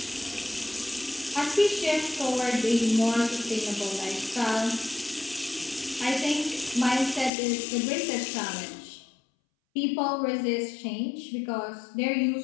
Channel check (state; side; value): drops out; right; at 7.3 s